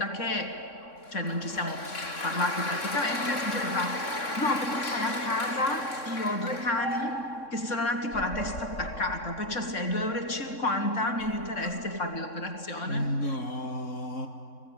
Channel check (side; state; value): right; late; 3.6 ms